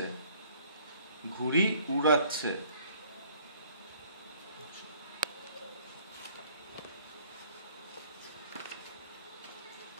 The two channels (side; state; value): both; inverted; correlation -0.58